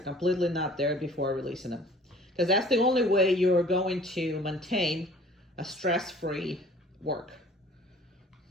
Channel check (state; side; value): normal; both; correlation 0.50